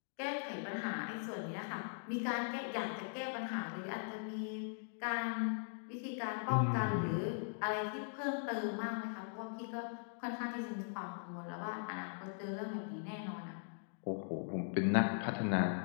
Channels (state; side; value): silent; right; digital silence